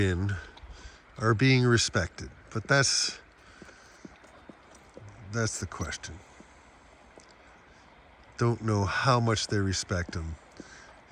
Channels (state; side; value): identical; both; correlation 1.00